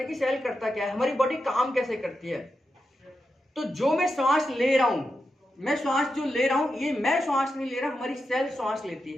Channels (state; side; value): normal; both; correlation 0.88